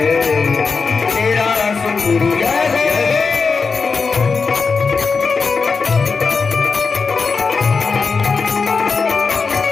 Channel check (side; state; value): right; quieter; 4.8 dB